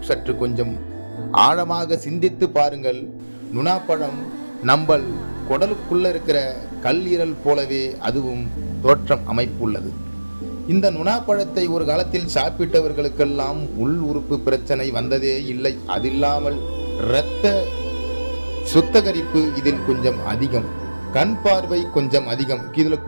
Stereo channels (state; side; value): inverted; both; correlation -1.00